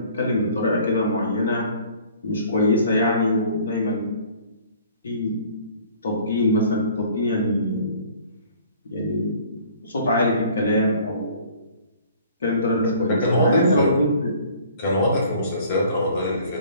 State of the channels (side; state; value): both; inverted; correlation -0.52